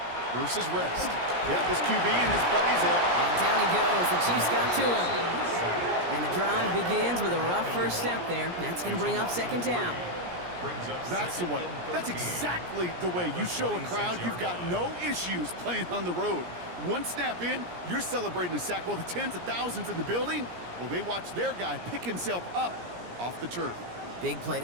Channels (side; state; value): left; late; 17 ms